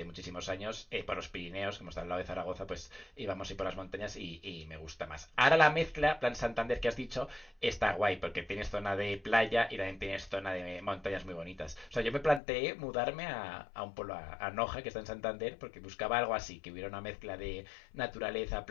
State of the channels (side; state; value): right; drops out; at 12.4 s